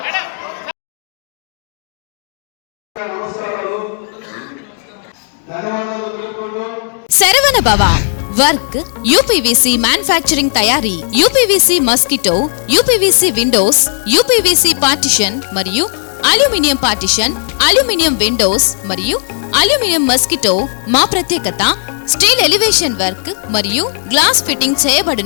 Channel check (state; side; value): silent; right; 58 dB below the other